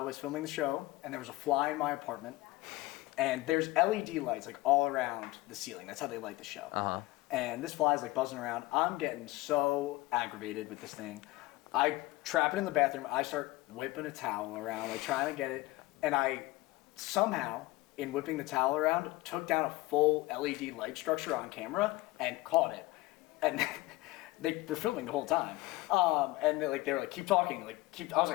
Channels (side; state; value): right; quieter; 19.9 dB